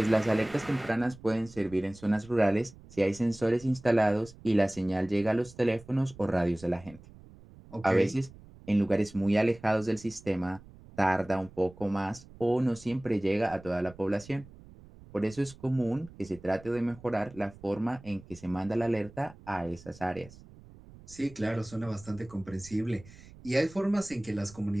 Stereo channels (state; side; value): noise; right; rumble, 20 dB below the sound